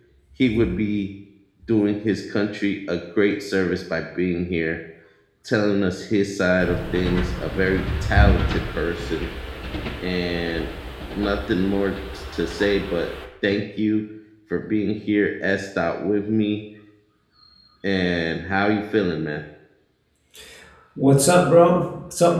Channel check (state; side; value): identical; both; correlation 1.00